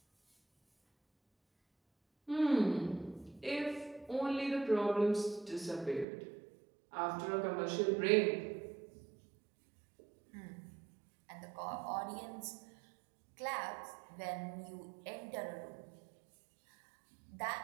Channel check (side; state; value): left; drops out; at 6.1 s